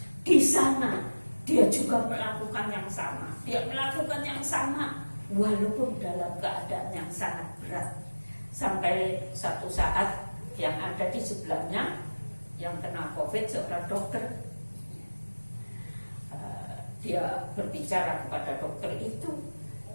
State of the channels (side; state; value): both; inverted; correlation -1.00